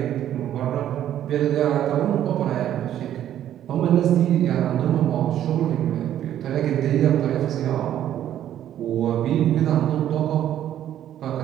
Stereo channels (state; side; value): quieter; left; 11.3 dB